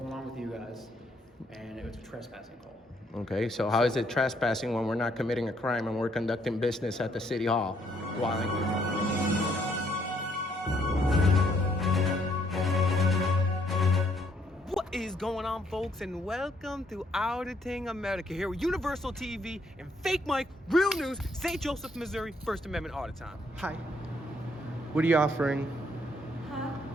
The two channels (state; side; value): normal; both; correlation 0.70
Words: on with you guys, and it was a trespassing call. Okay, so how is it trespassing when we're not committing a crime and we're conducting business at the city hall? What is going on, folks, and welcome to Auditing America here with Universal TV and Fake Mike, Real News, St. Joseph, Missouri, First Amendment Audit Time. Hi. What are you offering? Huh?